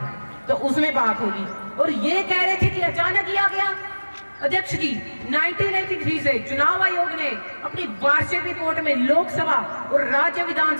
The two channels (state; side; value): inverted; both; correlation -1.00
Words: तो उसमें बात होगी। और ये कह रहे थे कि अचानक किया गया। अध्यक्ष जी, 1983 से चुनाव आयोग ने अपनी वार्षिक रिपोर्ट में लोकसभा और राज्य